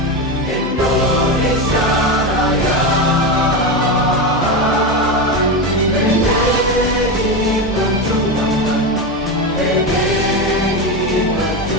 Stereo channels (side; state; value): both; normal; correlation 0.15